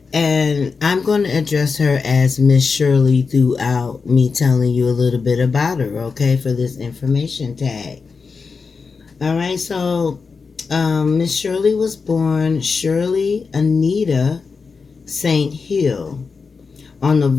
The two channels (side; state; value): right; quieter; 4.9 dB